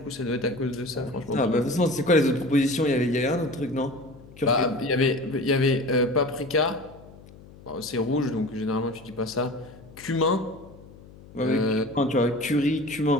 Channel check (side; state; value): left; noise; hum, 21 dB below the sound